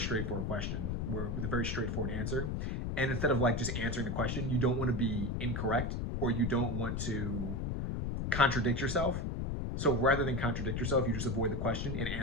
question, where with a very straightforward answer, and instead of like just answering the question, you don't want to be incorrect or you don't want to contradict yourself. So rather than contradict yourself, you just avoid the question and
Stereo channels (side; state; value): left; noise; rumble, 1 dB below the sound